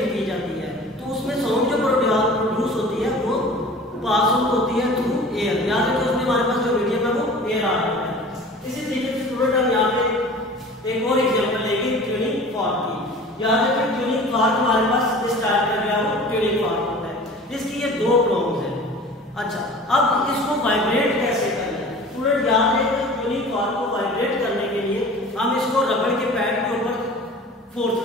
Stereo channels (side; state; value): both; normal; correlation 0.42